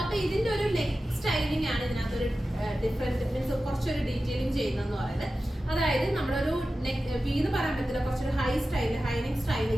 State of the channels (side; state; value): both; normal; correlation 0.94